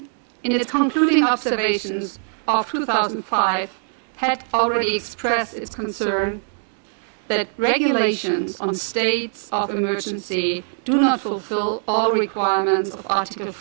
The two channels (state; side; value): silent; left; 62 dB below the other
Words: in its concluding observations of 2005, had already expressed its concern that regulations on states of emergency do not fulfill all requirements of Article